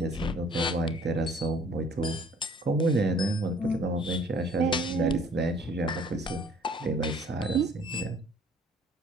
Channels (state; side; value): normal; both; correlation 0.56